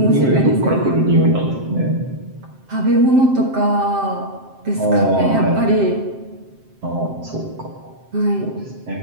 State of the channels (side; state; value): left; late; 7.6 ms